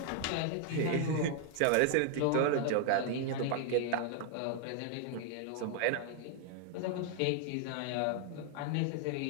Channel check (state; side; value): different; both; correlation 0.00